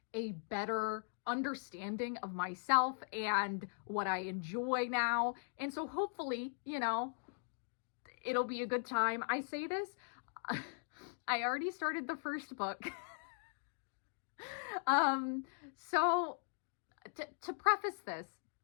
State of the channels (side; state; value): right; silent; digital silence